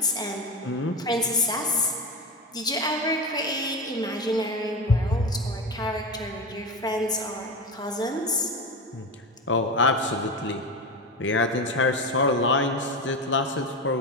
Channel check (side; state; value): both; normal; correlation 0.22